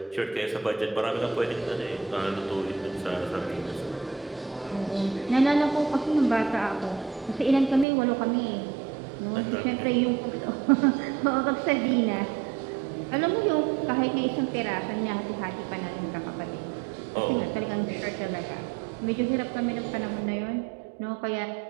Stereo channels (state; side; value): drops out; left; at 7.9 s